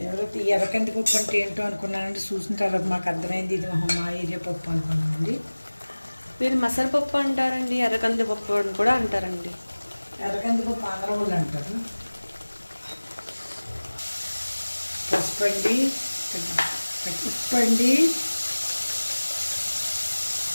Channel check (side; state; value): both; inverted; correlation -1.00